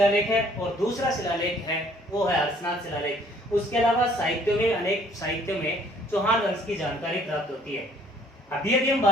है और दूसरा शिलालेख है वो है हर्षनाथ शिलालेख। उसके अलावा साहित्यों में, अनेक साहित्यों में चौहान वंश की जानकारी प्राप्त होती है। अभी हम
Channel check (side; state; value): both; normal; correlation 0.59